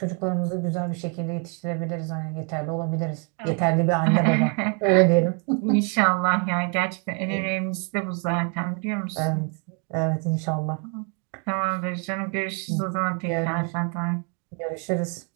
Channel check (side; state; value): left; quieter; 38.3 dB